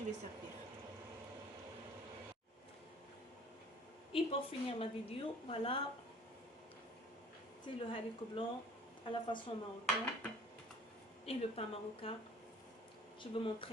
vais servir. Et pour finir ma vidéo, voilà, c'est le haricot blanc à la façon marocaine et le pain marocain. Je vais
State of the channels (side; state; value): both; normal; correlation 0.49